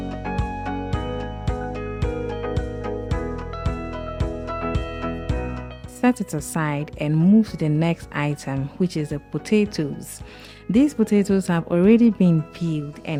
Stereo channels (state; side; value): identical; both; correlation 1.00